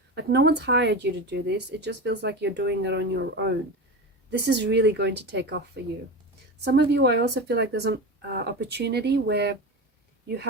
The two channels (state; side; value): normal; both; correlation 0.24